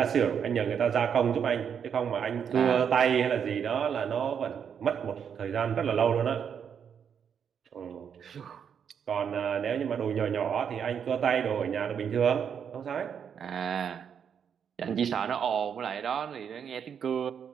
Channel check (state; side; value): quieter; left; 7.6 dB